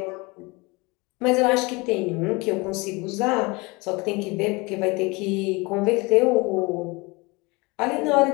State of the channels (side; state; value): right; quieter; 25.8 dB